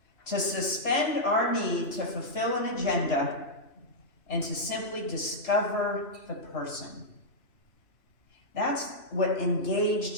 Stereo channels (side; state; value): right; late; 3.0 ms